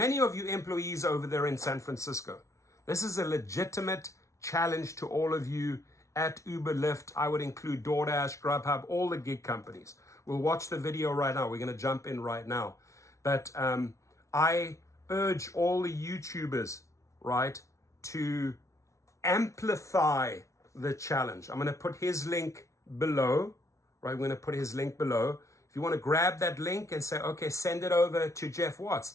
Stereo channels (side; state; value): right; late; 0.14 ms